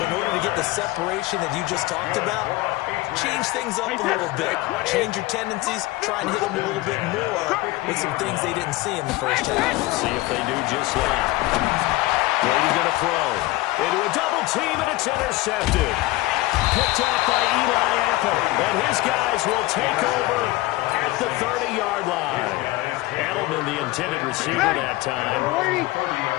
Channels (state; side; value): quieter; right; 19.1 dB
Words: in order to get the separation that you just talked about, change things up a little bit. Change your tendencies. Try and hit them a little bit more with some things they didn't see in the first half. See if they do just that. Brady's going to throw into a double team, and it's intercepted. Picked off by Eli Apple, and his guys will take over at the 30-yard line. Edelman, the intended receiver that time.